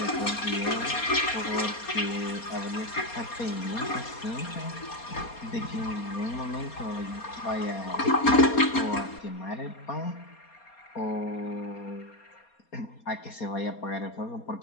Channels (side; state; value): right; late; 4.3 ms